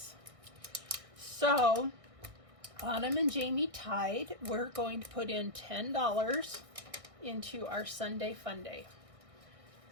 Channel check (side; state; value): left; late; 1.6 ms